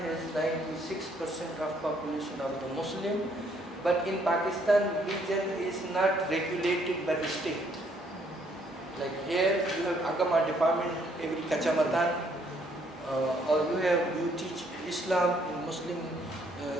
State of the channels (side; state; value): both; normal; correlation 0.67